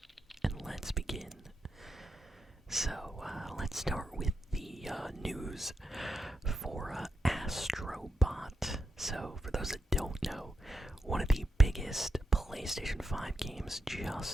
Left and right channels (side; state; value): both; normal; correlation 0.85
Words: and let's begin. So, let's start with the news for Astro. So, for those that don't know, one of the biggest PlayStation 5 games